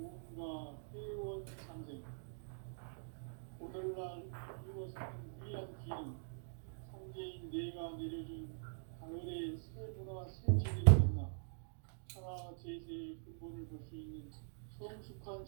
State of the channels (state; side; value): silent; left; digital silence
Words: 회원 상생. 오늘날 인류가 사는 유일한 길은 상제인 내가 내려준 가을의 새 문화, 새 진리를 만나 천하 제세의 근본을 볼 수 있는 성숙한